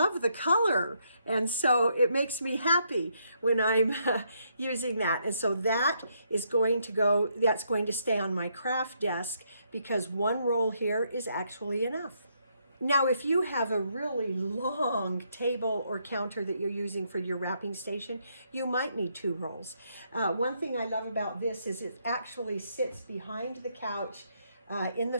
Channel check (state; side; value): inverted; both; correlation -0.75